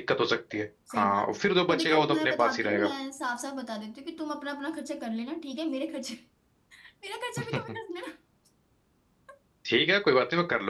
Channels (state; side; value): identical; both; correlation 1.00